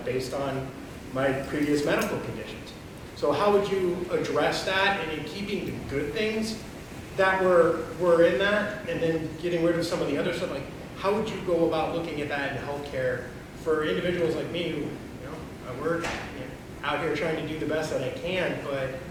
based on my previous medical conditions. So how would you address that, and in keeping the good things that were in that, and then getting rid of some of the other stuff? Like, how would you go about looking at that in healthcare for individuals like me who, I work out here trying to do the best that I can, but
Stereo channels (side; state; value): both; identical; correlation 1.00